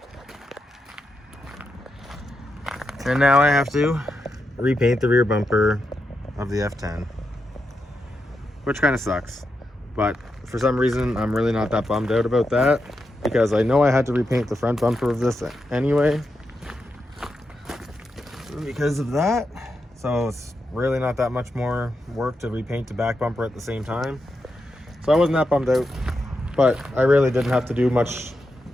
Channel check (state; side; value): normal; both; correlation 0.86